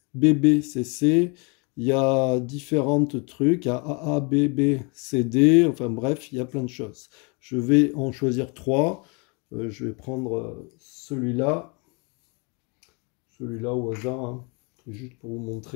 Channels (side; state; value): right; quieter; 32.2 dB